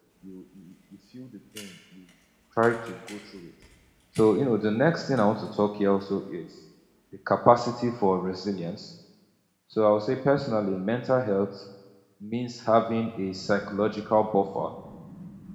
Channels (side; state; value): both; identical; correlation 1.00